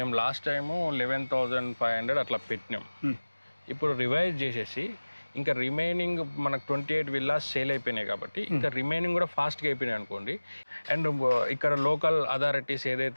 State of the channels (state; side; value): inverted; both; correlation -1.00